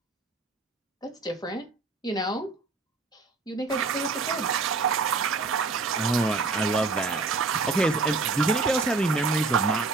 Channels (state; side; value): quieter; left; 3.9 dB